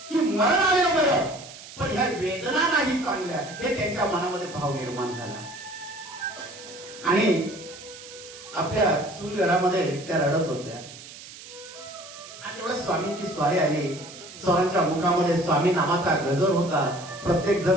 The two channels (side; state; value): right; noise; hiss, 16 dB below the sound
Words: की मरण आलं बरं, पण ह्या वेदना नाही चांगल्या हे त्यांच्या मनामध्ये भाव निर्माण झाला। आणि आपल्या सुलगडामध्ये त्या रडत होत्या आणि तेवढ्या स्वामींची स्वारी आली। स्वामींच्या मुखामध्ये स्वामी नामाचा गजर होता, प्रत्येक